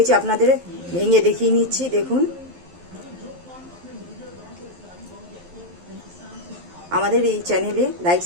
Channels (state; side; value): late; left; 11 ms